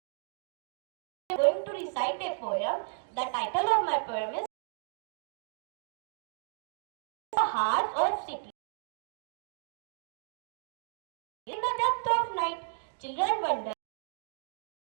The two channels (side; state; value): left; silent; digital silence